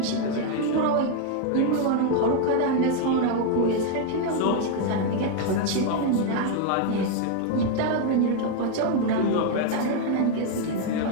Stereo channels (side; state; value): both; different; correlation 0.00